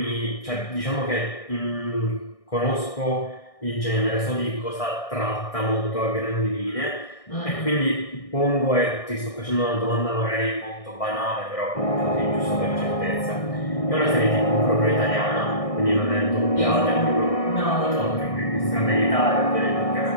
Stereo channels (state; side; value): late; right; 1.6 ms